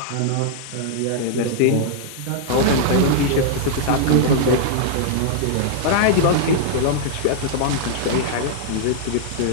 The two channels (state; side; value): different; both; correlation -0.01